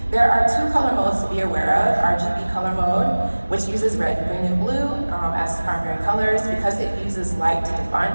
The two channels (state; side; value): inverted; both; correlation -1.00